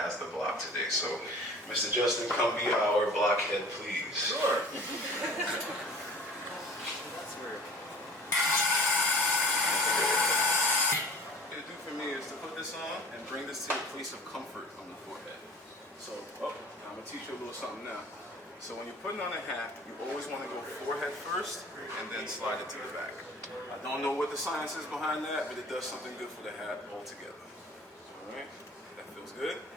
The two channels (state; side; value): normal; both; correlation 0.44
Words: the block today. So Mr. Justin, come be our blockhead, please. Sure. That's weird. Is to put this on and bring this to a place of comfort on the forehead. So, I'm going to teach you a little something now. So when you're putting on a hat, you always want to go forehead first and then slide it to the back. I don't know what the science is behind that, but it does something good for the hat altogether. Alright, that feels good?